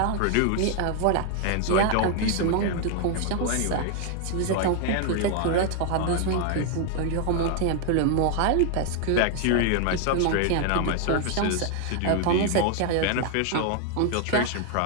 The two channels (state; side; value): different; both; correlation 0.00